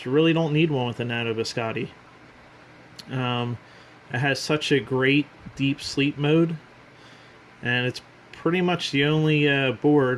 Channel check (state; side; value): identical; both; correlation 1.00